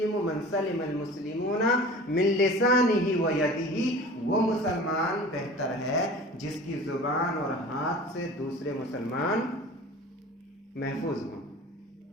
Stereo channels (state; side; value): normal; both; correlation 0.40